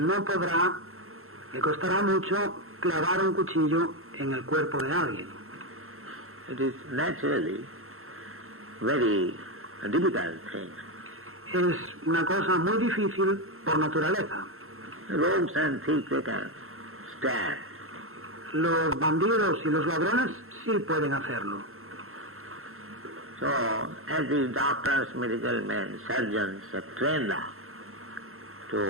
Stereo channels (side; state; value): left; late; 0.62 ms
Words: podrá, le costará mucho clavar un cuchillo en el cuerpo de alguien. It is naturally very difficult thing. Es una cosa muy difícil por naturaleza. Rogues and thieves they can stand. Los bandidos y los ladrones sí pueden hacerlo. So, as these doctors, medical men, surgeons are trained